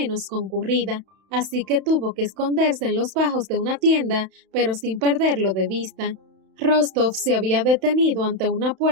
concurrida, así que tuvo que esconderse en los bajos de una tienda, pero sin perderlo de vista. Rostov se había detenido ante una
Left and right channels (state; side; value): late; left; 31 ms